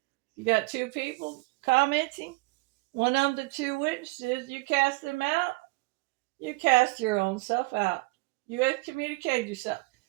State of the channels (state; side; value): quieter; left; 24.1 dB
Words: You got two people commenting. One of the two witnesses, you cast them out. You cast your own self out. You excommunicate yourself.